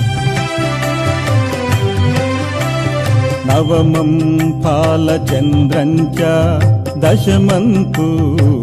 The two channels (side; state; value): both; identical; correlation 1.00